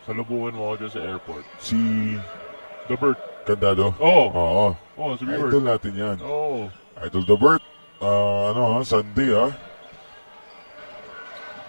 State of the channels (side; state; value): both; inverted; correlation -1.00